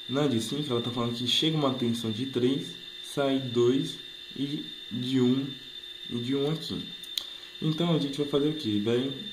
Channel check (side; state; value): both; identical; correlation 1.00